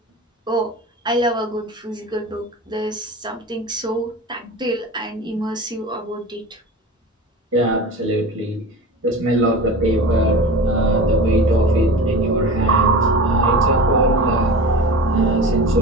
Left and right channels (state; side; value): normal; both; correlation 0.34